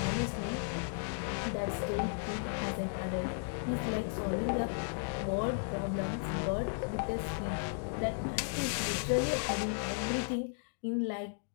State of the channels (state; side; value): silent; right; digital silence